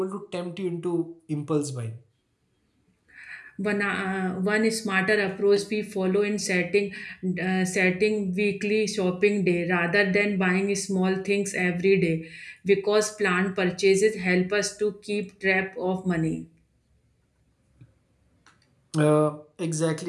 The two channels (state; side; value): identical; both; correlation 1.00